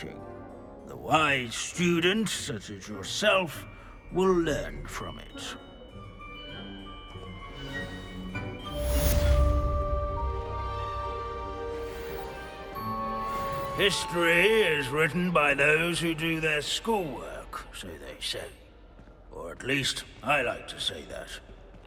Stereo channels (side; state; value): both; identical; correlation 1.00